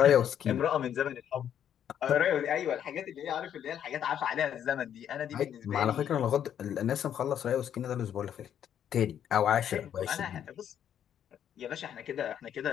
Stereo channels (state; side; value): quieter; right; 9.6 dB